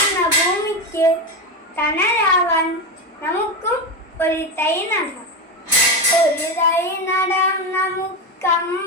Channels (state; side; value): normal; both; correlation 0.15